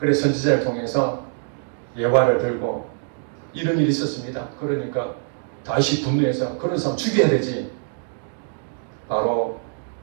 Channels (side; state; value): left; silent; 63 dB below the other